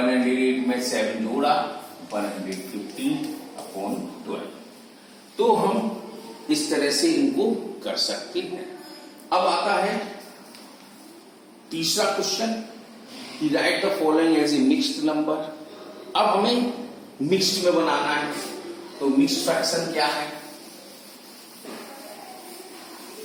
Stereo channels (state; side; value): identical; both; correlation 1.00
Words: में 7 जोड़ा 115/12। तो हम इस तरह से इनको कर सकते हैं। अब आता है तीसरा क्वेश्चन कि write the following as a mixed number. अब हमें मिक्स्ड में बनाना है। तो मिक्स्ड फ्रैक्शन क्या है?